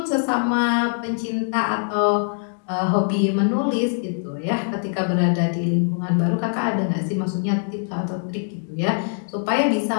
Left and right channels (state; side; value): silent; right; 63 dB below the other